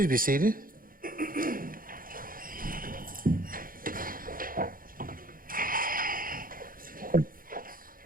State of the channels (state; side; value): late; left; 0.41 ms